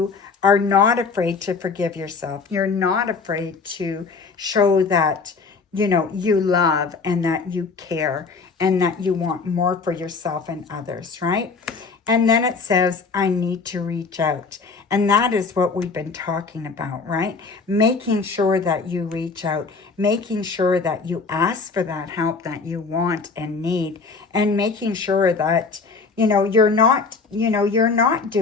are not afraid to forgive yourself. You're not afraid to show that, you know, you love and that you care and that you want more for yourself and others, right? And then it says, I need to reach out. And that is what we've been talking about, right? Making sure that you reach out, making sure that you ask for that help that you want and need, and making sure that, you know, you're not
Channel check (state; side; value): quieter; right; 4.6 dB